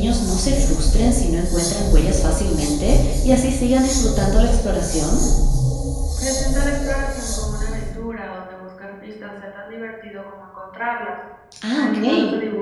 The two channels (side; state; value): both; identical; correlation 1.00